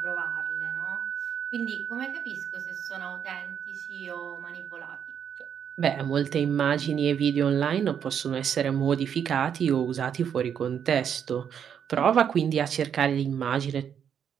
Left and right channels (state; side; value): quieter; left; 8.2 dB